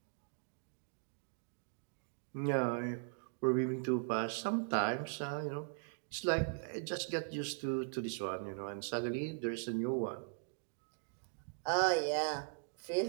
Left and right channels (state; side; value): silent; left; digital silence